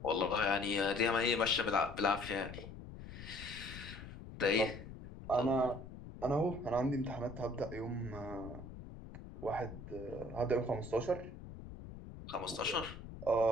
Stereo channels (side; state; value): left; noise; rumble, 12 dB below the sound